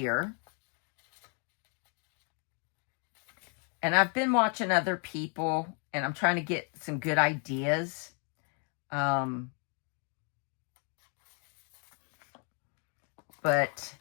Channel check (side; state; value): right; quieter; 40.0 dB